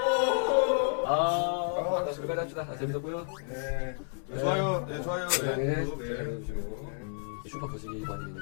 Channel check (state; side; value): silent; right; 57 dB below the other